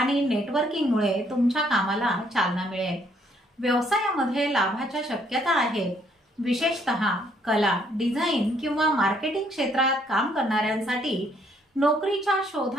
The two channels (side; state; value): both; normal; correlation 0.68